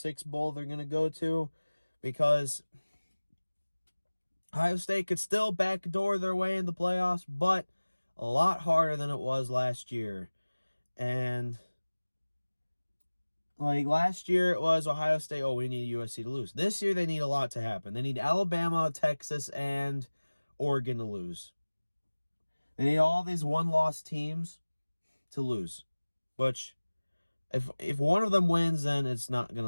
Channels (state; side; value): inverted; both; correlation -1.00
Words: bowl they're going to go to, because Ohio State could still backdoor their way in the playoffs, but a lot harder than it was last year. And like last year, it was Ohio State, oh, we need USC to lose. This year, they need a lot to happen. They need Alabama, Texas, and Oregon to lose. They need all these one-loss teams to lose, which if one of them wins, then it's not going